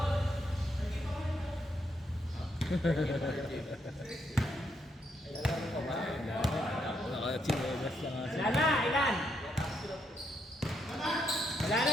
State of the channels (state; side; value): normal; both; correlation 0.77